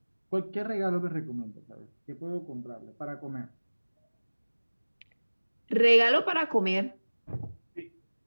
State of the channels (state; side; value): inverted; both; correlation -1.00